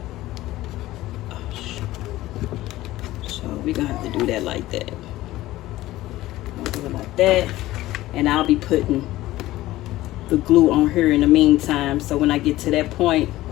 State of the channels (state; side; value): quieter; right; 16.5 dB